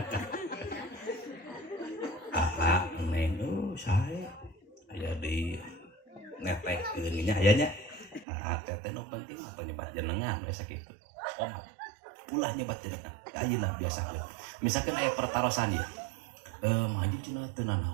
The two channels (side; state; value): left; drops out; at 8.2 s